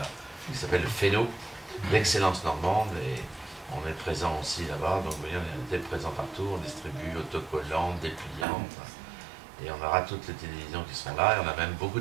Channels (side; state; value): left; drops out; at 8.5 s